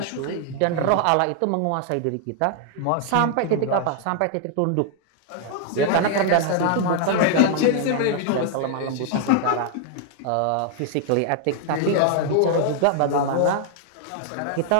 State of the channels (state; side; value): different; both; correlation 0.00